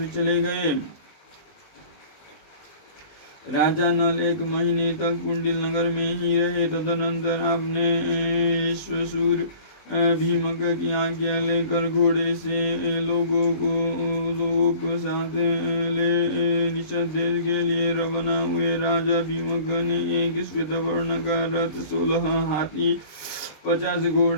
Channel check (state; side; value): late; right; 19 ms